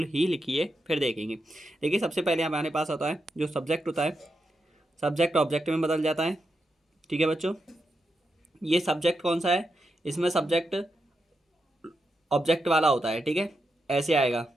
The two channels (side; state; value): both; normal; correlation 0.85